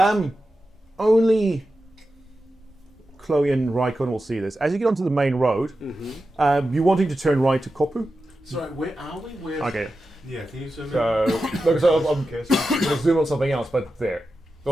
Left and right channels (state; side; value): normal; both; correlation 0.91